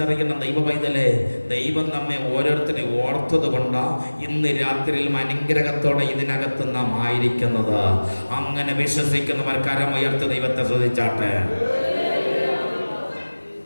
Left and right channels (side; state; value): both; inverted; correlation -1.00